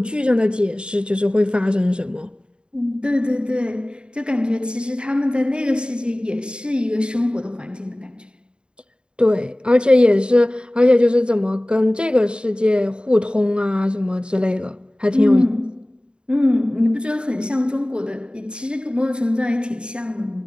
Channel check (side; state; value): left; late; 0.052 ms